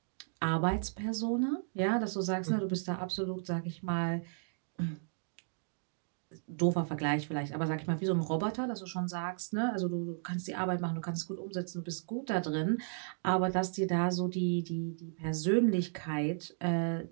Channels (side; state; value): left; silent; digital silence